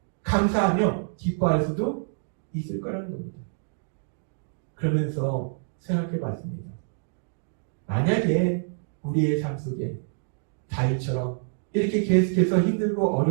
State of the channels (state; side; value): silent; left; digital silence